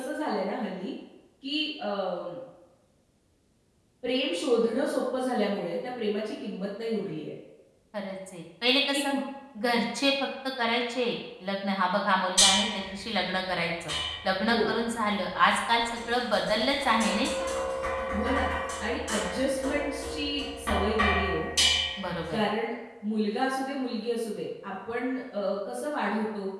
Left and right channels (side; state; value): both; identical; correlation 1.00